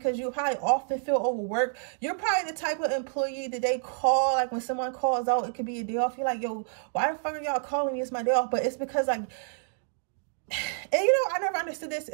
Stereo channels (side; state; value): left; silent; digital silence